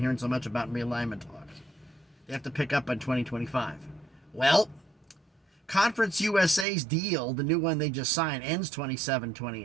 hearing so much about in realignment talks. They have to pick up on 2025. Well, Conference USA's deal, the new one they just signed, ends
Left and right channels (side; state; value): left; drops out; at 6.7 s